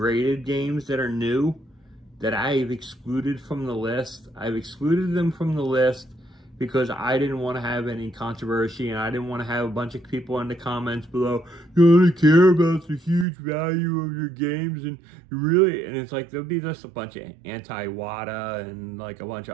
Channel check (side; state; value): left; drops out; at 13.2 s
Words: games that are new that I've excluded from the list. I've excluded them from the list because I didn't want to have any controversy, and I didn't want to have a bunch of people in the comments below, you only care about the huge value of your games, and really, and it's like, there'll be just a bunch of anti-WADA and like a bunch